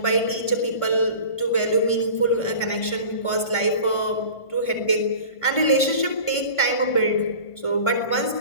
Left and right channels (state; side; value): late; right; 1.5 ms